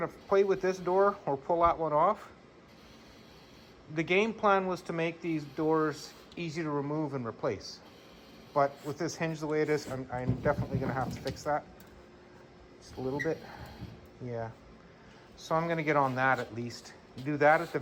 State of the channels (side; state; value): both; identical; correlation 1.00